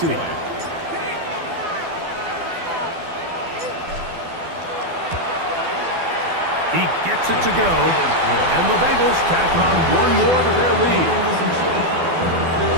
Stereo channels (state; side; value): late; left; 12 ms